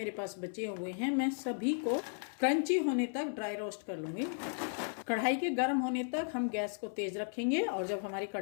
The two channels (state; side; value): silent; right; 54 dB below the other